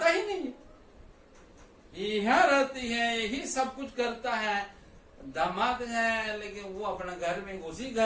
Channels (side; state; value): both; identical; correlation 1.00